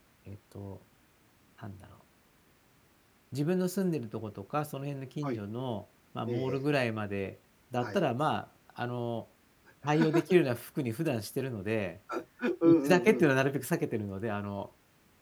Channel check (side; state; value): both; identical; correlation 1.00